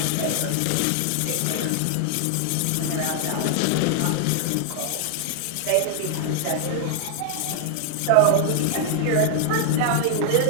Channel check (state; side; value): different; both; correlation 0.00